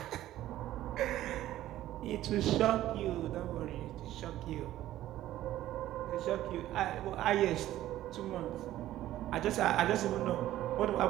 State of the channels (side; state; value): left; quieter; 13.9 dB